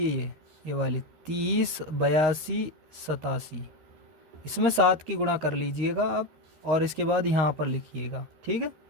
ये वाली 30, 82, 87, इसमें 7 की गुणा कर लीजिएगा आप और इसके बाद यहाँ पर लिखिएगा, ठीक है।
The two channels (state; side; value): late; left; 13 ms